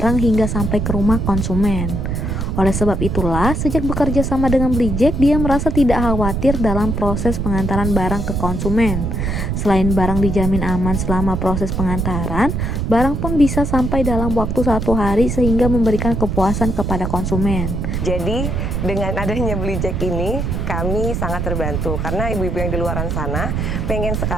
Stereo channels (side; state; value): right; noise; rumble, 1 dB below the sound